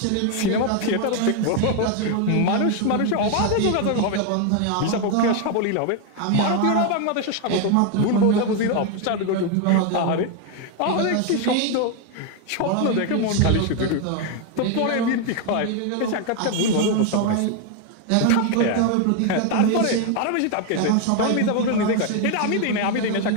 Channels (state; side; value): different; both; correlation 0.01